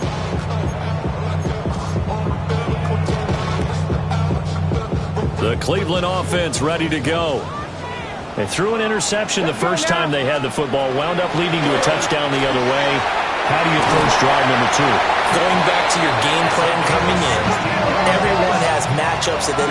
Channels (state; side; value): identical; both; correlation 1.00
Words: The Cleveland offense ready to go. They threw an interception the first time they had the football, wound up leading to a touchdown the other way. How do you approach drive number 2? Going back to your game plan coming in, everyone has matchups that they